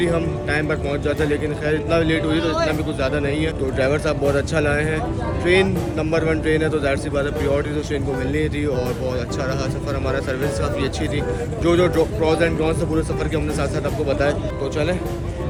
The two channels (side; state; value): both; identical; correlation 1.00